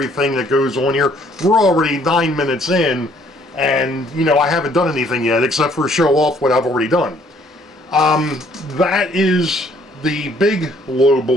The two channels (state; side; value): normal; both; correlation 0.62